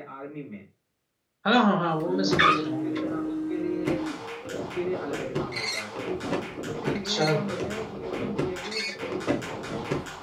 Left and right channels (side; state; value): both; identical; correlation 1.00